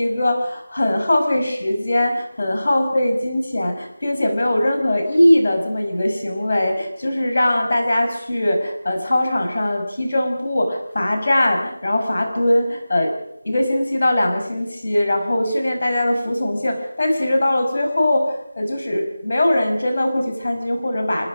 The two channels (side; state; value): both; inverted; correlation -0.96